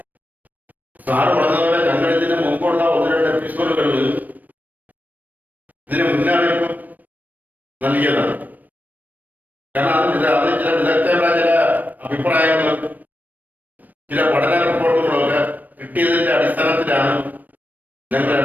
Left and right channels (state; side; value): late; left; 0.084 ms